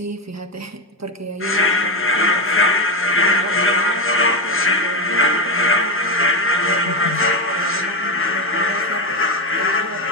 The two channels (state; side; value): normal; both; correlation 0.10